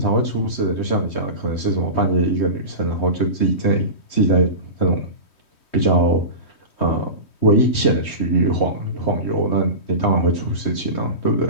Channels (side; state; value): right; late; 3.2 ms